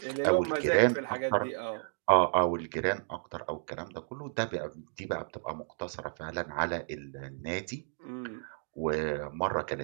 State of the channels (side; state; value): left; silent; digital silence